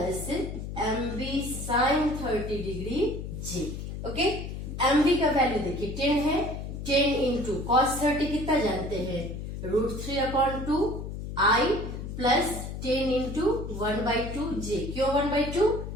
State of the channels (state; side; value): noise; left; hum, 7 dB below the sound